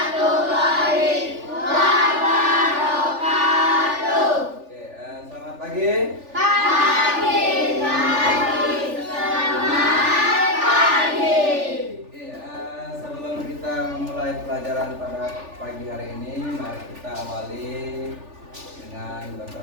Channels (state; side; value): late; left; 3.4 ms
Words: wabarakatuh. Oke, selamat pagi. Selamat pagi. Oke, sebelum kita memulai pelajaran pada pagi hari ini, mari kita awali dengan